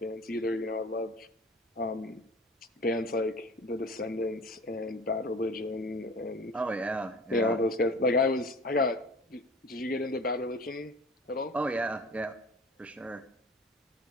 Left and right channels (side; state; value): both; normal; correlation 0.41